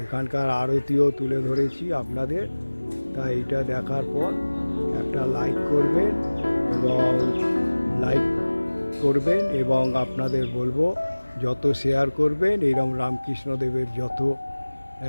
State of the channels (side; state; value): both; inverted; correlation -1.00